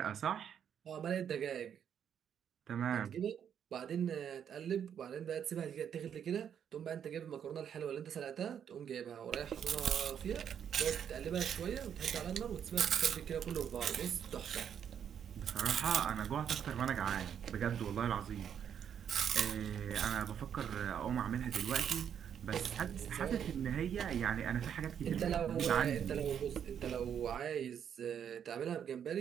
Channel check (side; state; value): left; quieter; 8.5 dB